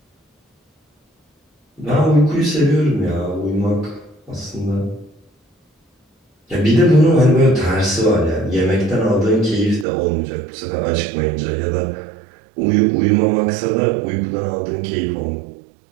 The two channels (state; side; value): drops out; left; at 9.9 s